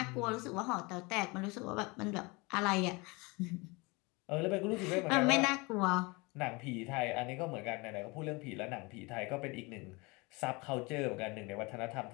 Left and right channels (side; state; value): right; quieter; 26.5 dB